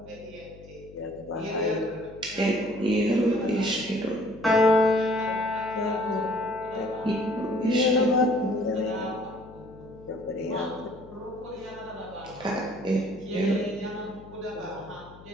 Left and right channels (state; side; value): noise; left; hum, 20 dB below the sound